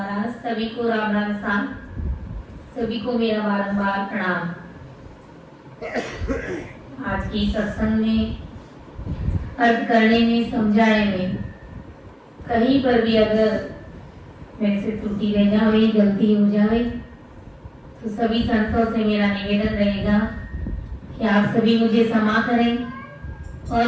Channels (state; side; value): identical; both; correlation 1.00